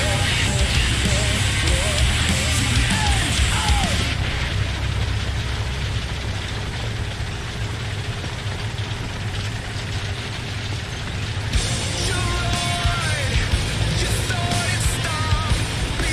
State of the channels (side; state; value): both; identical; correlation 1.00